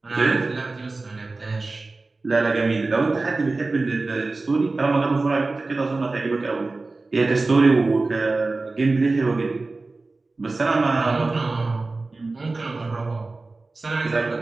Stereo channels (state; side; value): quieter; left; 3.5 dB